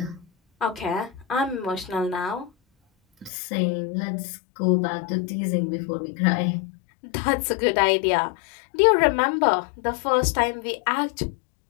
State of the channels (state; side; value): drops out; right; at 3.3 s